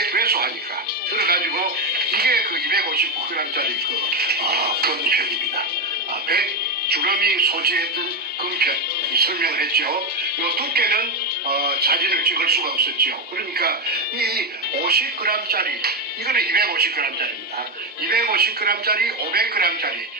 왜소하니까 들어가지고 이게 그 250g짜리 그 금편입니다. 100 주름이 소지했던 금편 설명을 했죠. 이 두께는 사진을 찍을 수가 없었죠. 그러니까 이 50g짜리 이거는 250g짜리입니다. 250g짜리, 500g짜리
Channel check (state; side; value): normal; both; correlation 0.10